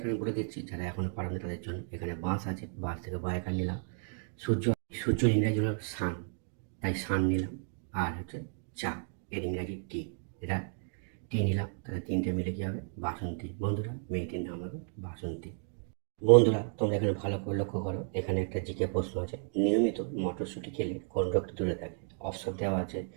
বলে দিচ্ছি, যারা এখনো পারেনি তাদের জন্য। এখানে বাঁশ আছে, বাঁশ থেকে বয়াকার নিলাম। সূর্য, সূর্য ইংরাজি হলো সান, তাই সান নিলাম। আর হচ্ছে চা, এর ইংরাজি টি, এটা টি নিলাম। তাহলে তিনটে মিলে কি হবে? বাসন্তী। বন্ধুরা, মেয়েটির নাম হবে বাসন্তী। বন্ধুরা, তোমরা এখানে ভালো করে লক্ষ্য করো, এখানে একটা জিকে প্রশ্ন আছে, নিয়মিত মটরশুঁটি খেলে কোন রোগটি দূরে থাকে? অপশন দেওয়া আছে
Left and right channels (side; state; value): left; silent; 56 dB below the other